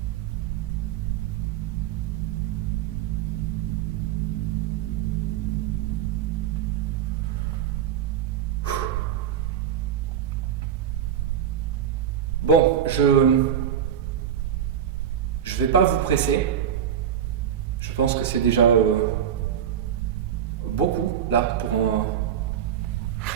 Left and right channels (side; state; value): left; quieter; 9.3 dB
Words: Bon, je vais pas vous presser. Je pense que c'est déjà beaucoup là pour